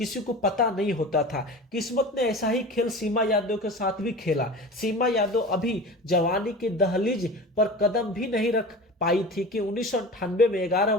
को पता नहीं होता था। किस्मत ने ऐसा ही खेल सीमा यादव के साथ भी खेला। सीमा यादव अभी जवानी की दहलीज पर कदम भी नहीं रख पाई थी कि 1998 में 11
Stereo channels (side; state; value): both; normal; correlation 0.34